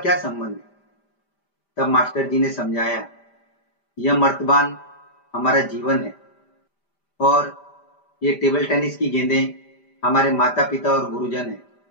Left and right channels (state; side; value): late; right; 5.0 ms